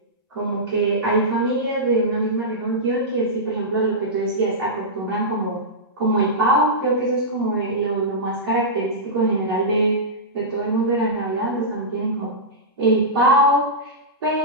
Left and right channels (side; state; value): both; normal; correlation -0.14